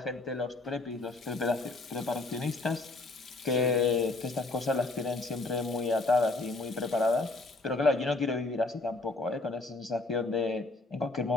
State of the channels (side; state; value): right; quieter; 3.2 dB